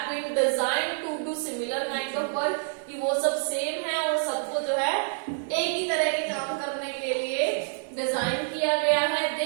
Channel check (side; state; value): left; silent; 60 dB below the other